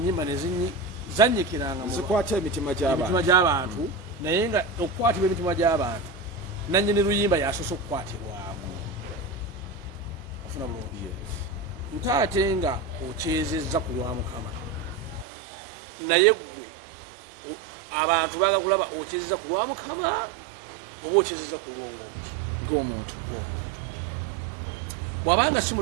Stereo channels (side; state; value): left; drops out; at 15.2 s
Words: nezanyikiranga zikwata emitima gy'abantu naye nga okukwatibwa emitima gy'abantu nannyini luyimba yasoose okukwatibwamu ofuna bulungi nte ate nga okyezezza ku lwa Mukama naye gwe abantu baga kulaba okyezezza ku lwa Mukama oba okyezezza ku lwongomuki ng'omuntu bw'abanga si